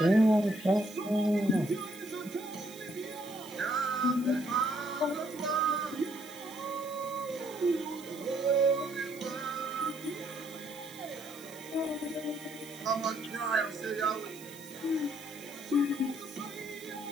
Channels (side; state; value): right; noise; hiss, 18 dB below the sound